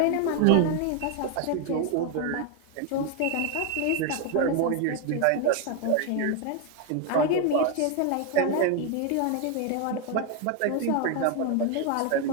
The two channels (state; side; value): different; both; correlation 0.01